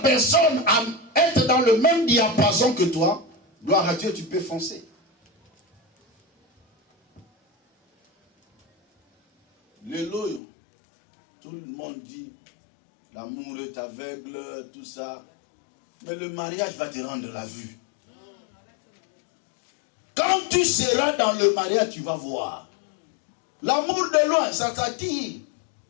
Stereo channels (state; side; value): drops out; right; at 10.4 s